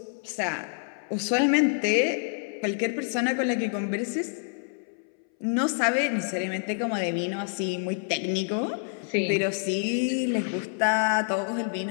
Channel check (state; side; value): silent; right; 60 dB below the other